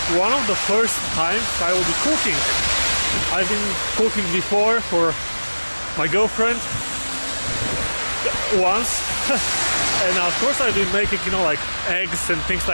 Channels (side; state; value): both; inverted; correlation -1.00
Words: one of the first times I will be cooking. I've been cooking before for my girlfriend once and of course I've been making, you know, like eggs and things